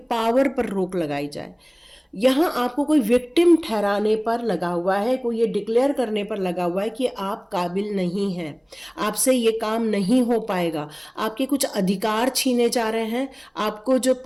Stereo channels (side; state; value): both; identical; correlation 1.00